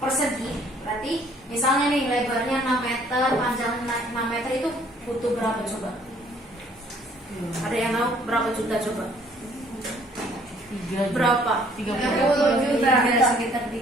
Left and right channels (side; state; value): both; normal; correlation 0.60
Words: Berarti misalnya nih lebarnya 6 meter, panjang 6 meter itu butuh berapa coba? Ada yang tahu berapa juta coba? Berapa? 30 juta. Sekitar